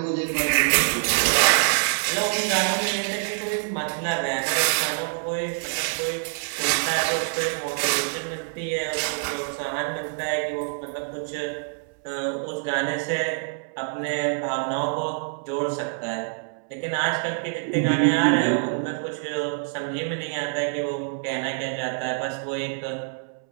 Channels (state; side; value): silent; left; 61 dB below the other